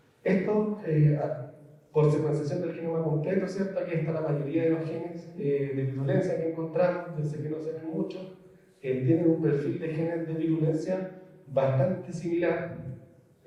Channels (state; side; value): identical; both; correlation 1.00